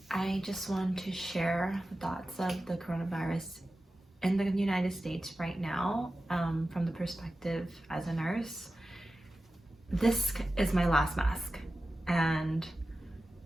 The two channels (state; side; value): normal; both; correlation 0.94